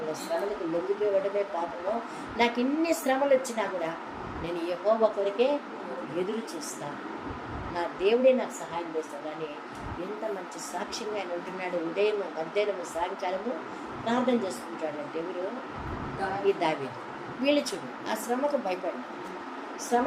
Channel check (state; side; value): identical; both; correlation 1.00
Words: శ్రమలకు లొంగిపోవడమే పాపంలో. నాకు ఇన్ని శ్రమలు వచ్చినా కూడా నేను యెహోవా కొరకే ఎదురు చూస్తాను, నా దేవుడే నాకు సహాయం చేస్తాడు అని ఎంత మంచి సాక్ష్యంగా ఆయన ఉంటున్నాడు. ఉదయం మధ్యాహ్నము సాయంకాలము ప్రార్థన చేసుకుంటాడు. అంటే ఎవరు? ఈ దావీదు. వీళ్ళు చూడు, ఆ శ్రమకు భయపడి